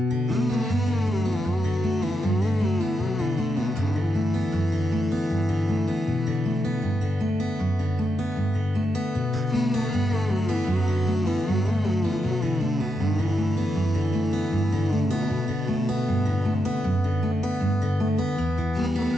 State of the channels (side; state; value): both; normal; correlation 0.84